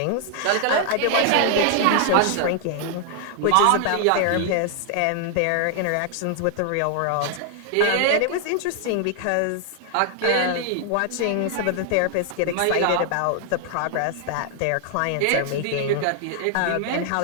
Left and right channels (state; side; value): different; both; correlation 0.00